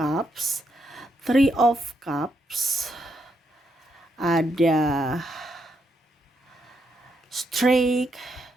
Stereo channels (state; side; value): normal; both; correlation 0.79